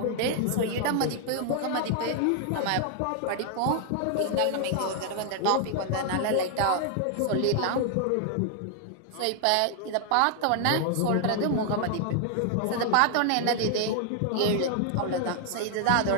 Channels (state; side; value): different; both; correlation 0.00